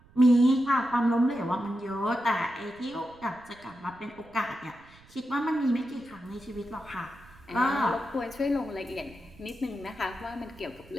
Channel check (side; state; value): right; noise; rumble, 25 dB below the sound